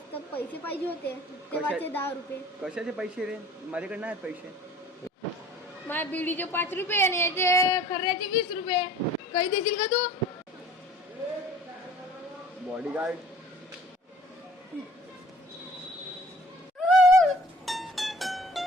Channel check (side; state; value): both; normal; correlation 0.50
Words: तर पैसे पाहिजे होते तेव्हाचे 10 रुपये. कशाचे पैसे रे? माझ्याकडे नाही पैसे. माझ्या बिडीचे 5 रुपये आणि याचे खर्याचे 20 रुपये. काही देशील का तू? बॉडीगार्ड